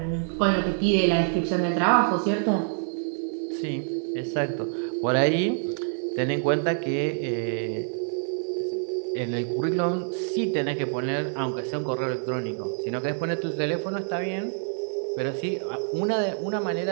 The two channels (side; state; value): left; silent; digital silence